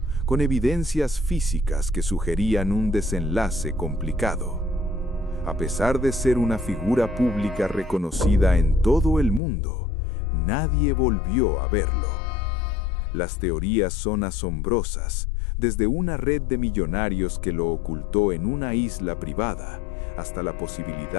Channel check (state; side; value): drops out; right; at 9.4 s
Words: con evidencias físicas que sugerían un desenlace complicado. A pesar de ser una figura pública reconocida en todo el mundo, nadie volvió a verlo. Las teorías son asombrosas, desde una red de millonarios que lo ocultó en una isla privada, hasta la